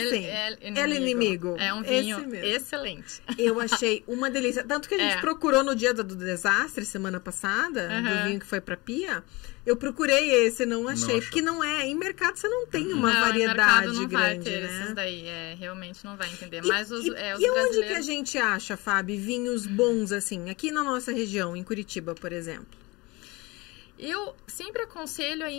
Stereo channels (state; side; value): quieter; right; 24.1 dB